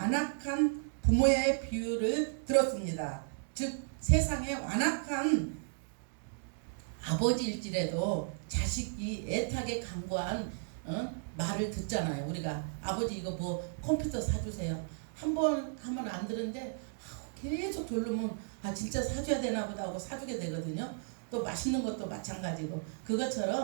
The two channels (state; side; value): silent; left; digital silence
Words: 부모의 비유를 들었습니다. 즉 세상에 완악한 아버지일지라도 자식이 애타게 간구한 말을 듣잖아요. 우리가 아버지 이거 뭐 컴퓨터 사주세요. 한 번 하면 안 들은데 계속 졸르면 진짜 사줘야 되나 보다 하고 사주게 되거든요. 또 맛있는 것도 마찬가지고,